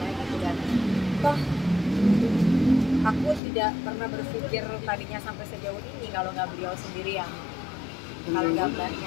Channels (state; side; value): drops out; right; at 3.4 s